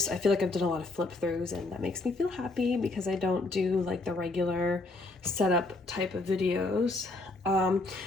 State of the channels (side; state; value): right; quieter; 3.2 dB